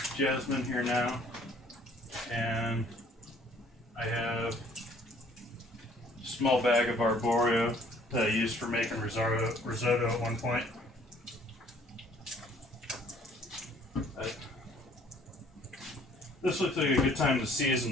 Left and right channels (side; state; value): both; normal; correlation 0.58